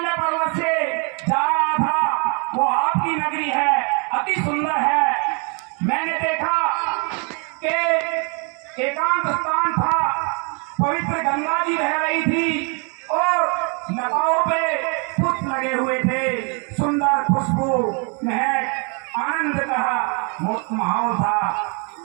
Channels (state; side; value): quieter; left; 36.0 dB